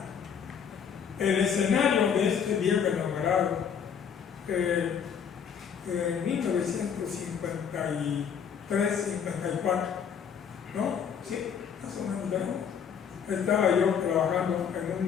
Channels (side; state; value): right; quieter; 7.5 dB